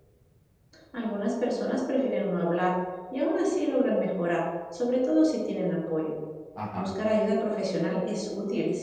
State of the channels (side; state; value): both; identical; correlation 1.00